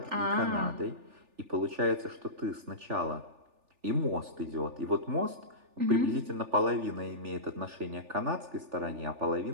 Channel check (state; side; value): late; left; 3.4 ms